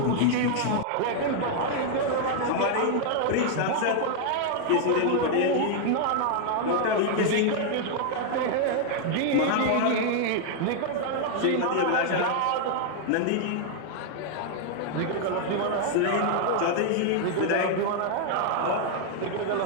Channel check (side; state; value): both; different; correlation 0.00